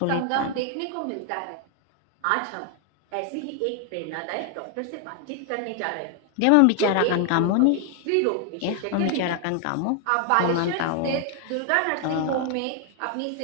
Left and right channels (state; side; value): different; both; correlation 0.00